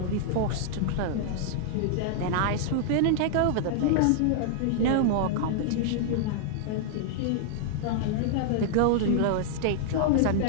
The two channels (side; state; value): both; different; correlation -0.01